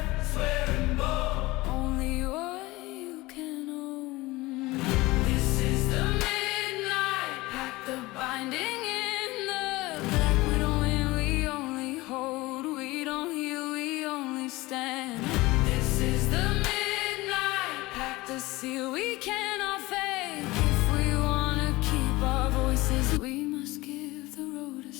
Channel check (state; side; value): quieter; right; 20.6 dB